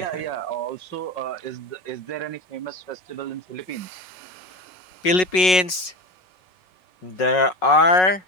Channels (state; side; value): late; right; 5.4 ms